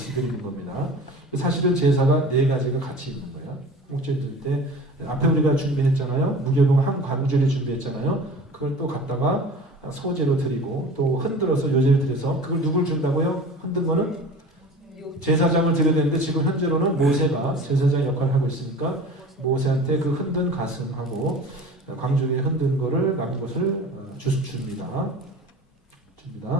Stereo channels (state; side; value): normal; both; correlation 0.39